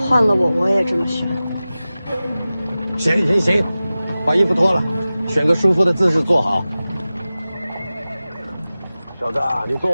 换了我也这么选。行，把衣服脱了，选个舒服的姿势坐好。小子，你坐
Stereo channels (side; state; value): both; inverted; correlation -0.96